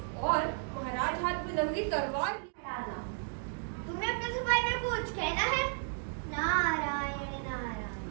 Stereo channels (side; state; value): left; silent; 55 dB below the other